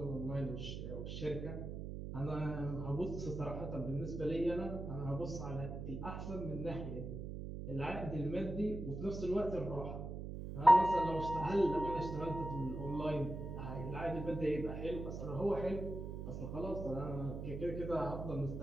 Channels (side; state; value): right; noise; hum, 6 dB below the sound